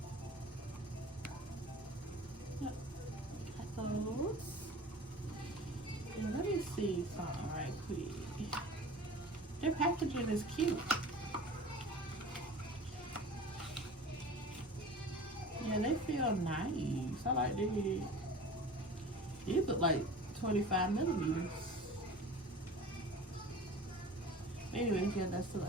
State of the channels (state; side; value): normal; both; correlation 0.39